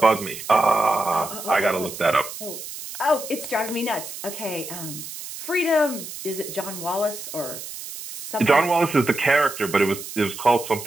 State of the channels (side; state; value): right; noise; hiss, 10 dB below the sound